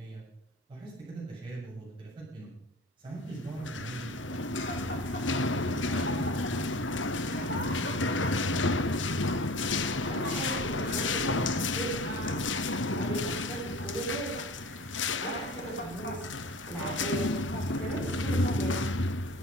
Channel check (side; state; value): both; normal; correlation 0.40